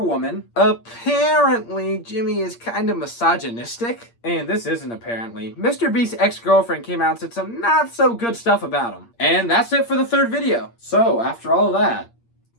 women. Apparently, Jimmy is kind of misogynistic. And this isn't apparently. MrBeast's ex-girlfriend came out and said some not so good stuff about him. And that's it for the third video. So, after all of that,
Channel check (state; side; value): late; right; 8.6 ms